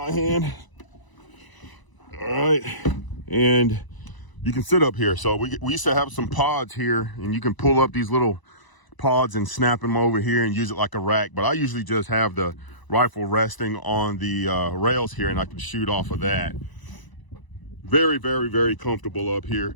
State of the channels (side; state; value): right; late; 1.0 ms